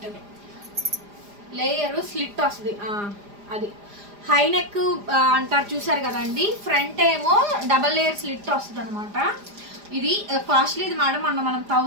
layer slit వస్తుంది. అది హై నెక్ అంటారు చూసారు కదండి. ఫ్రంట్ ఏమో డబల్ లేయర్ స్లిట్ వస్తుంది అనమాట. ఇది కాస్ట్లీ ఇది మేడం. మనం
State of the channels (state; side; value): late; left; 4.9 ms